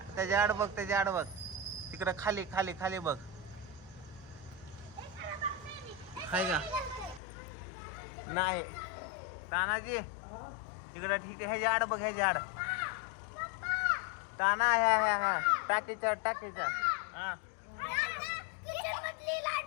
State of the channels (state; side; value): drops out; right; at 7.2 s